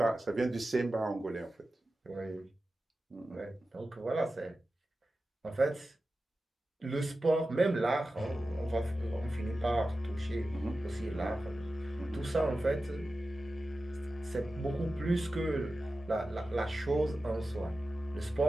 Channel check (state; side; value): normal; both; correlation 0.94